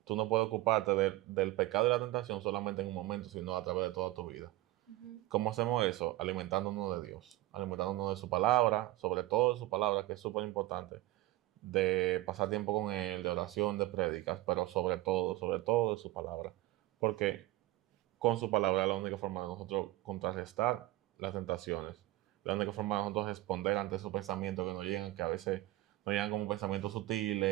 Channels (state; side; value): quieter; left; 17.4 dB